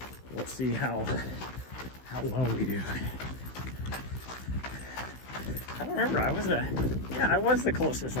We'll see how well we do. I don't remember. I was the closest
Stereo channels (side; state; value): right; late; 16 ms